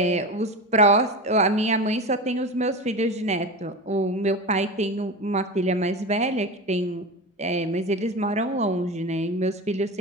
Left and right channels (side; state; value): both; normal; correlation 0.25